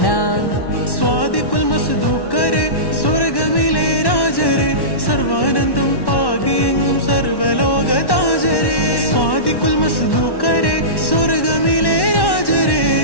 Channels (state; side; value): late; right; 1.1 ms